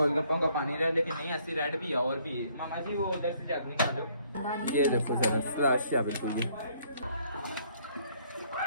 का पानी रहा लेकिन नहीं ऐसी रेड भी है और भी है मामा जी वो उधर से जग निकालो ये देखो जरा स्लश है बिल्कुल ये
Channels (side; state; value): both; inverted; correlation -0.65